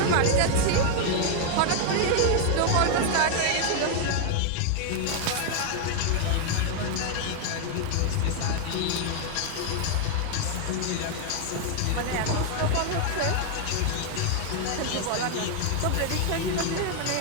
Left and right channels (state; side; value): different; both; correlation 0.00